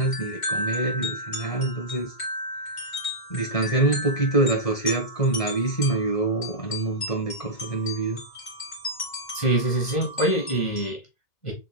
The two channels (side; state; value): right; late; 1.5 ms